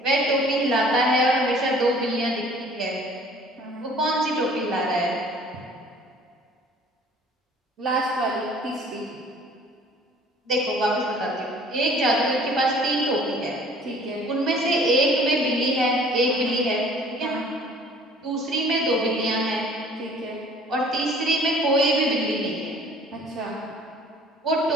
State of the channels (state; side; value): normal; both; correlation 0.52